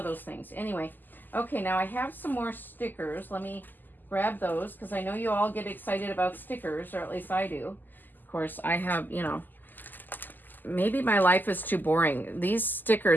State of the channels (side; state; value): right; late; 0.088 ms